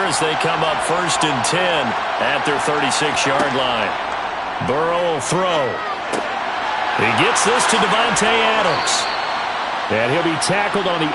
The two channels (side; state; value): both; identical; correlation 1.00